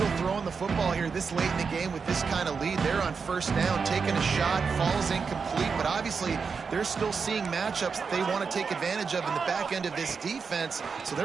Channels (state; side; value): quieter; left; 5.4 dB